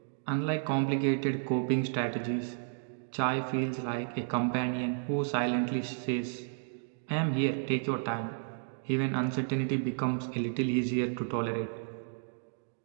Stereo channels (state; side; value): silent; left; digital silence